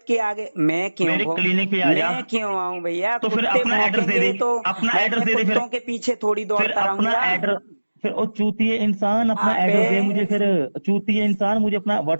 के आगे मेरे क्लिनिक पे आ जा, मैं क्यों आऊं भैया। तो फिर कुत्ते अपना एड्रेस दे भौंकेंगे दे, तो अपना मैं एड्रेस अपने दे दे कुत्तों फिर के पीछे थोड़ी फिर दौड़ता अपना रहूंगा। एड्रेस, फिर ओ चूतिए इंसान अपना अबे एड्रेस दे मुझे, फिर चूतिए इंसान मुझे अपना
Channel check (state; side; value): inverted; both; correlation -1.00